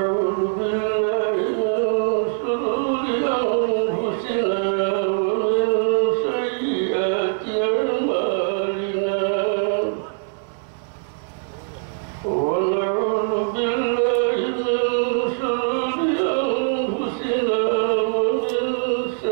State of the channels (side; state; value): left; silent; 64 dB below the other